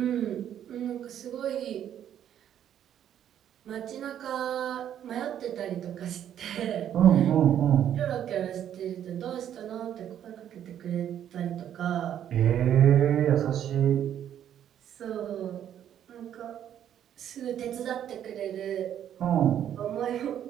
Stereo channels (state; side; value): quieter; left; 10.2 dB